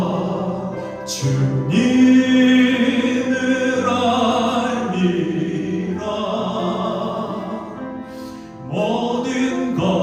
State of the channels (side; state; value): both; identical; correlation 1.00